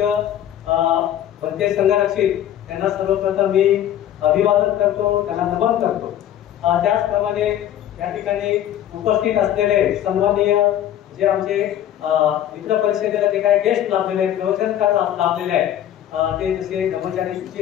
भंते संघरक्षित त्यांना सर्वप्रथम मी अभिवादन करतो, त्यांना नमन करतो. त्याचप्रमाणे या ठिकाणी उपस्थित असलेले सन्माननीय जे आमचे मित्र परिषदेला जे काही गेस्ट लाभलेले आहेत, प्रवचनकार लाभलेले आहेत, ते जसे धर्मचारी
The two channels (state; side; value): quieter; right; 11.3 dB